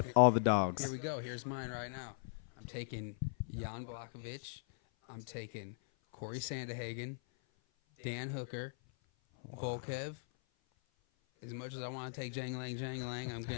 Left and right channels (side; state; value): right; silent; 51 dB below the other